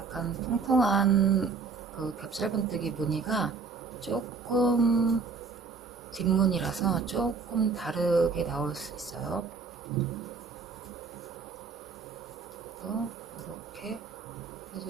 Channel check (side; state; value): left; quieter; 4.8 dB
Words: 통통한 그 겹짧은뜨기 무늬가 조금 뒷무늬라서 조금 다르게 나올 수 있어요. 또 이렇게